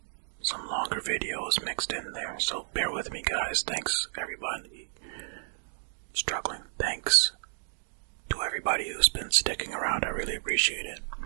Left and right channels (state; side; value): silent; left; digital silence